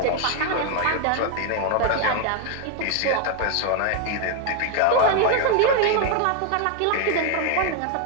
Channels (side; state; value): both; different; correlation 0.01